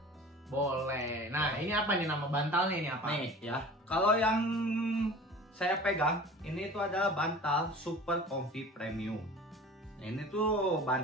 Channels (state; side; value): normal; both; correlation 0.40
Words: Boleh. Nah, ini apa nih nama bantalnya ini apa? Nih ya. Kalau yang saya pegang ini tuh adalah bantal Super Comfy Premium. Nah, ini tuh